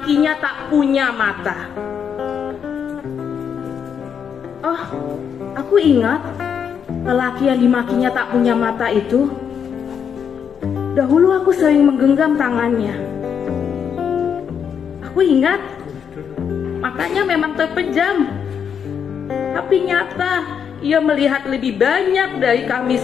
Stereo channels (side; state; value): right; quieter; 7.5 dB